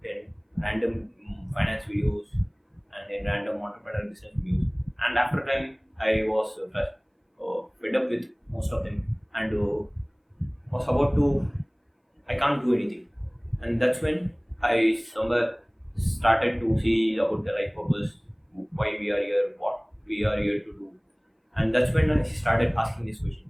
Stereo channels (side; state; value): both; identical; correlation 1.00